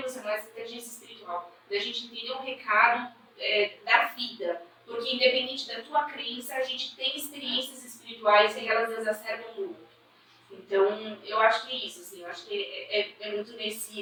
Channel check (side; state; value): both; identical; correlation 1.00